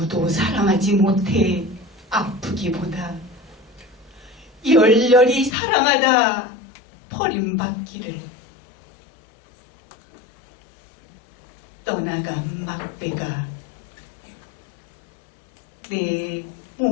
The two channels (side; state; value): right; drops out; at 5.6 s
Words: 사랑하지 못해 아프기보다 열렬히 사랑하다 버림받기를 떠나간 막배가 내